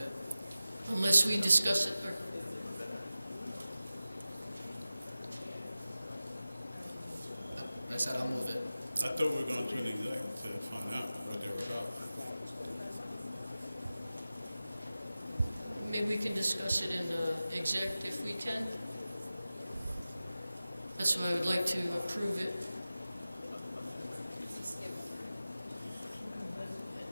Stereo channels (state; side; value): inverted; both; correlation -0.95